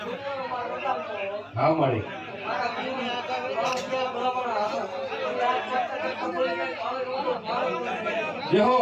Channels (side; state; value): both; identical; correlation 1.00